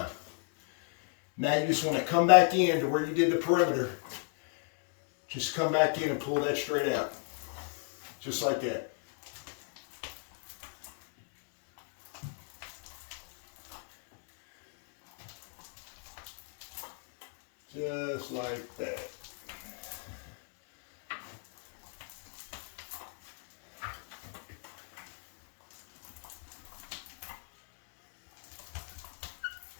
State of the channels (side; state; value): right; silent; 54 dB below the other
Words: Now you just want to come back in to where you did the perimeter. Just come back in and pull that straight out. Just like that. Just like that.